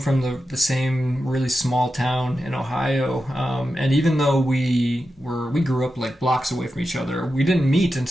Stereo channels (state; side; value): normal; both; correlation 0.90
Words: the same really small town in Ohio. And even though we grew up like blocks away from each other, we didn't meet